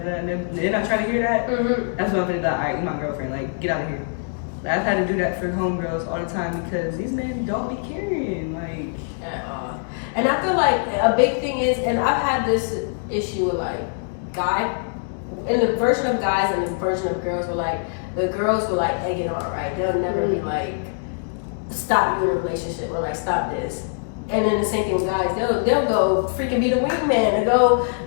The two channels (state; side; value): silent; right; digital silence